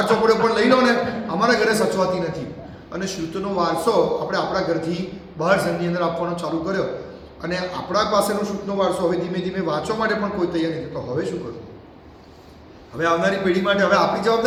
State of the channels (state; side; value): identical; both; correlation 1.00